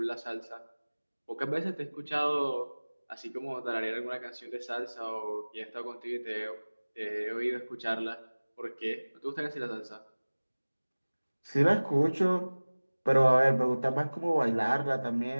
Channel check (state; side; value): inverted; both; correlation -1.00